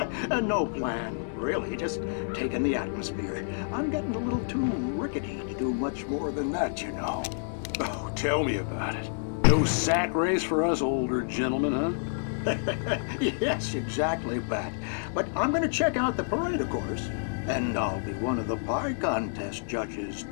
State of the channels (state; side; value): silent; right; digital silence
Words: No plan, really. Just taking the atmosphere. I'm getting a little too rickety to do much more than that, you know. Oh, tell me about it. No sack race for us older gentlemen, huh? Yes, exactly, Pat. But I'm going to check out the parade, of course. And I'll be one of the pie contest judges,